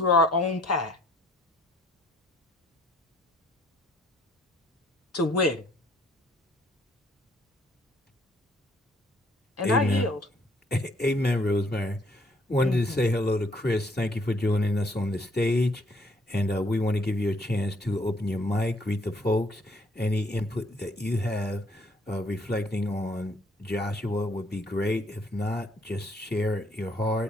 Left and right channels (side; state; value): both; normal; correlation 0.65